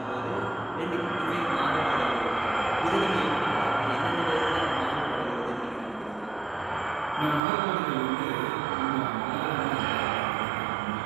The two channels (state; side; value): drops out; left; at 7.4 s